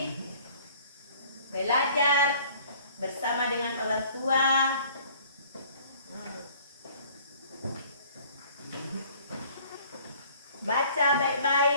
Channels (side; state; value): both; inverted; correlation -0.53